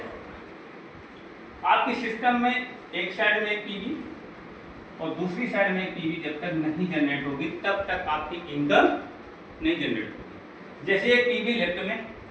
आपके सिस्टम में एक साइड में एक पीवी और दूसरी साइड में एक पीवी जब तक नहीं जनरेट होगी तब तक आपकी इनकम नहीं जनरेट होगी। जैसे एक पीवी लेफ्ट में,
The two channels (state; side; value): identical; both; correlation 1.00